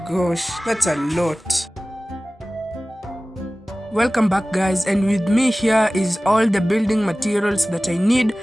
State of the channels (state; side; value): normal; both; correlation 0.98